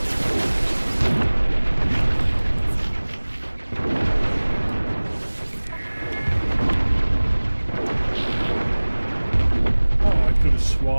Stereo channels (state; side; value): inverted; both; correlation -1.00